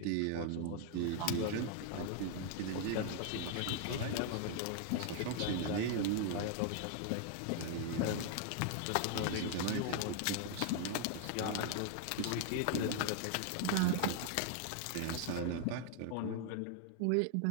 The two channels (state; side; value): different; both; correlation 0.00